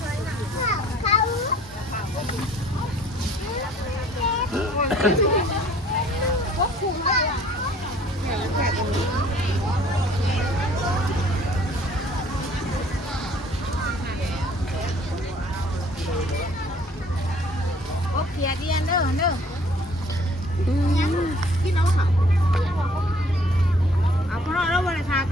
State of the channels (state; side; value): normal; both; correlation 0.56